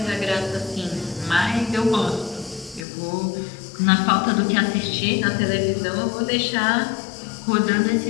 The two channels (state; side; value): drops out; right; at 2.9 s